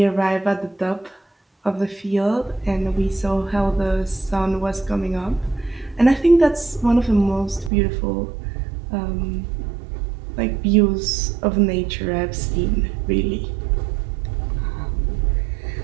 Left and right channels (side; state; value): left; drops out; at 7.7 s